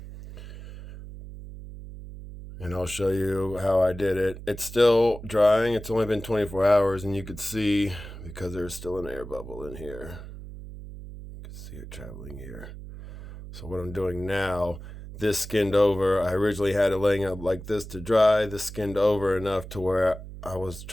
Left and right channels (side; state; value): right; noise; hum, 12 dB below the sound